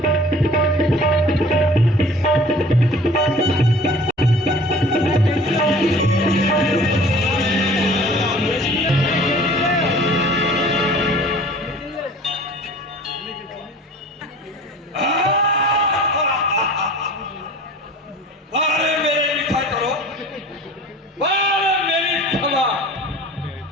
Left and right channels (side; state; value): both; normal; correlation 0.46